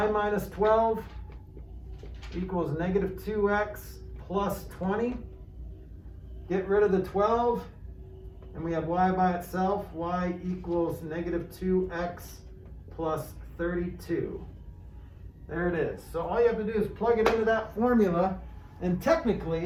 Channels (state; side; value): identical; both; correlation 1.00